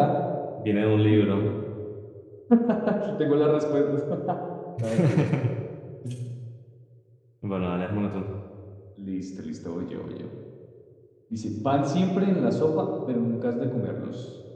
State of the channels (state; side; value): identical; both; correlation 1.00